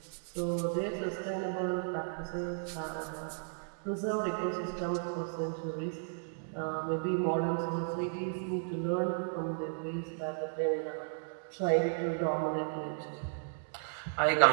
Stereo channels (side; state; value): left; silent; digital silence